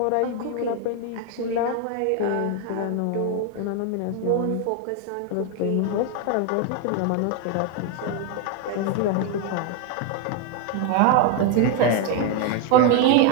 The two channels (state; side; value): different; both; correlation 0.01